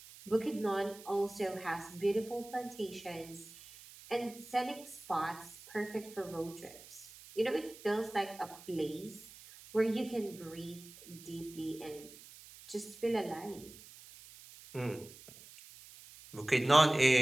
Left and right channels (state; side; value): noise; right; hiss, 18 dB below the sound